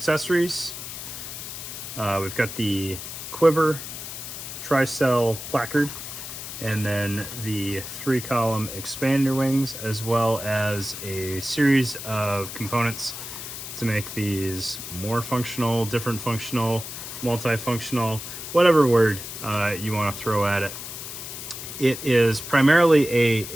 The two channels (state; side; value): noise; left; hiss, 9 dB below the sound